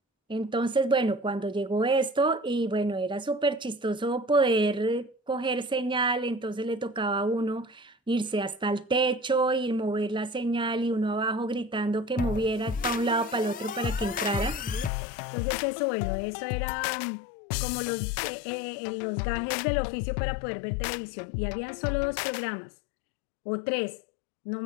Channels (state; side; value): drops out; right; at 14.9 s